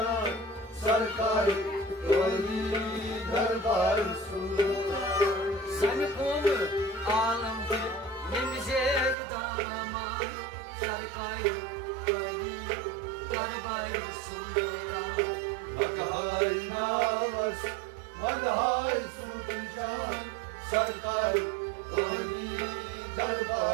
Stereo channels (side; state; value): left; drops out; at 9.2 s